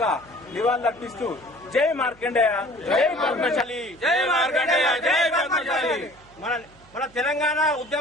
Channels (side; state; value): right; noise; hum, 27 dB below the sound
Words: నివాళులర్పిస్తూ జై మార్కండేయ, జై పద్మశాలి. జై మార్కండేయ, జై పద్మశాలి. మన తెలంగాణ